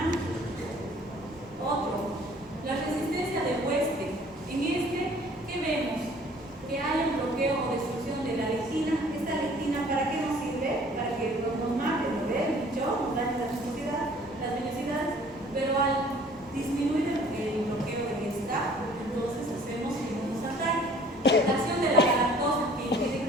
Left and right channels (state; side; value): normal; both; correlation 0.54